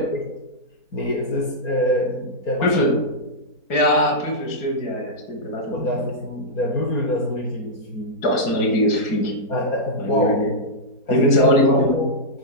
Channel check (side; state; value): right; late; 4.3 ms